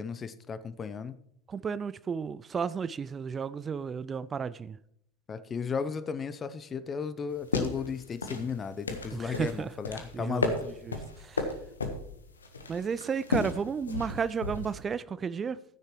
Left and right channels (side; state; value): both; normal; correlation 0.43